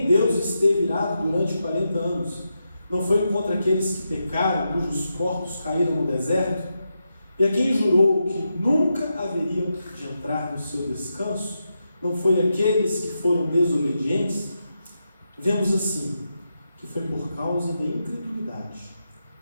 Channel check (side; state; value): both; inverted; correlation -0.86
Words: Deus esteve irado durante 40 anos? Não foi contra aqueles que pecaram, cujos corpos caíram no deserto? E a quem jurou que nunca haveriam de entrar no seu descanso? Não foi aqueles que foram desobedientes? Vemos assim, que foi por causa da incredulidade